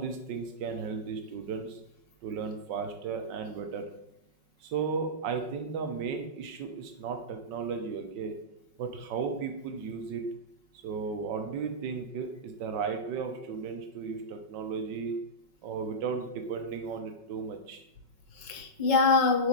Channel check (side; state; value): left; late; 5.4 ms